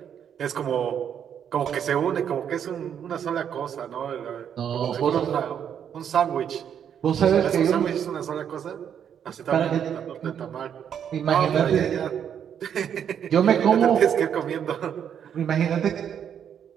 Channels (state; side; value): quieter; left; 8.6 dB